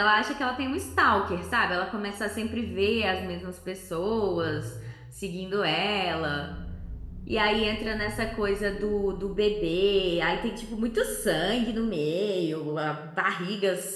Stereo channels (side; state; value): both; identical; correlation 1.00